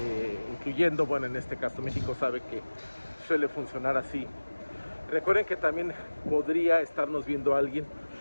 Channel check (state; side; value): inverted; both; correlation -1.00